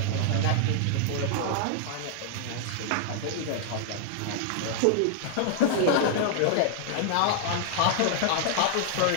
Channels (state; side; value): different; both; correlation -0.01